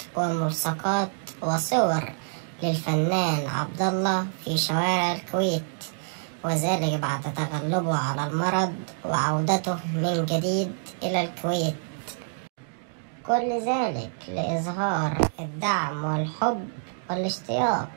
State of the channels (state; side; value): silent; left; digital silence